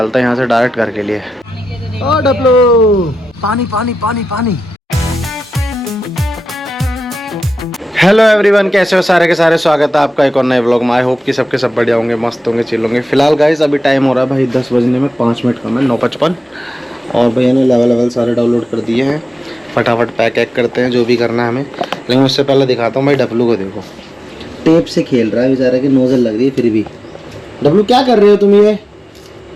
हैं यहाँ से डायरेक्ट घर के लिए। ओ डब्लू, पानी पानी पानी पानी। हेलो एवरीवन, कैसे हो सारे के सारे, स्वागत है आपका एक और नए व्लॉग में। आई होप कि सबके सब बढ़िया होंगे, मस्त होंगे, चिल होंगे। फिलहाल गाइस अभी टाइम हो रहा है भाई 10 बजने में 5 मिनट कम है, 9:55। और भैया ने लेवल सारे डाउनलोड कर दिए हैं। फटाफट पैक करते हैं जो भी करना है हमें। लेकिन उससे पहले दिखाता हूँ भाई डब्लू को। देखो टेप से खेल रहा है बेचारा, की नोजल लग रही है फिर भी। डब्लू क्या कर रहे हो तुम ये?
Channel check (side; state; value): both; normal; correlation 0.93